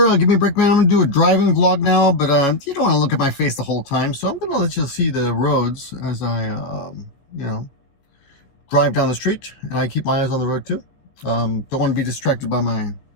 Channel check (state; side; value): late; right; 15 ms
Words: Gimmeabreakman. I'm gonna do a driving vlog now, but you don't want to look at my face the whole time, so I'm gonna let you see the roads as I, you know, drive down the street, and I keep my eyes on the road too. Don't want to be distracted by my